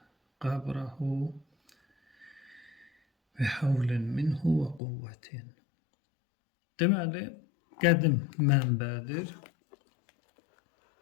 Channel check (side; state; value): right; drops out; at 4.8 s